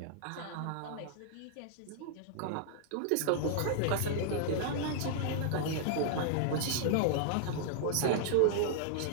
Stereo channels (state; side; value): different; both; correlation 0.00